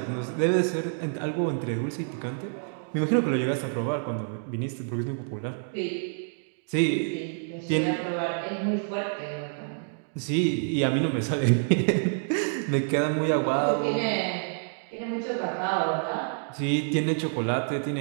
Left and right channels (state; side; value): silent; left; digital silence